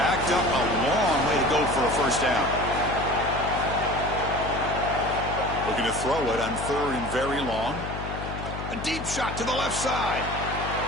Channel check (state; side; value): noise; left; hum, 7 dB below the sound